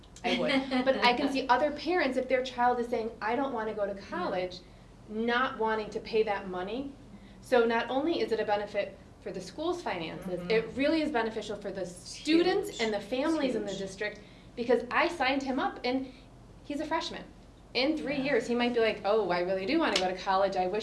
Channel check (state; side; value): identical; both; correlation 1.00